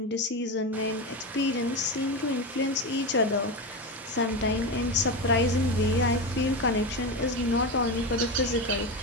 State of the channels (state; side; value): normal; both; correlation 0.18